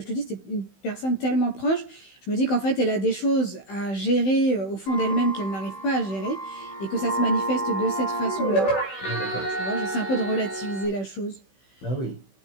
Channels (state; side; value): late; right; 15 ms